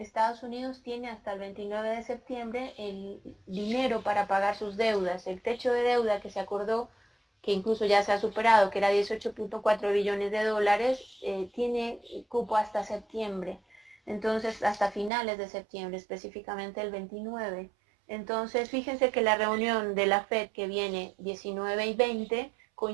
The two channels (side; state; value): left; drops out; at 15.1 s